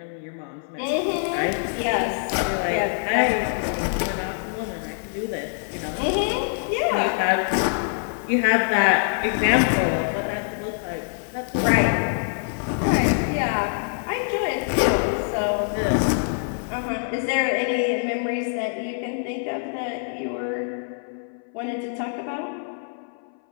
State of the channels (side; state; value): right; silent; 59 dB below the other